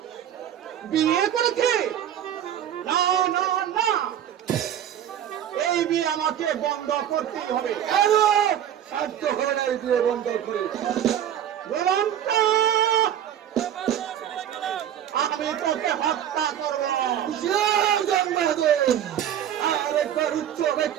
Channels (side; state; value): left; quieter; 10.3 dB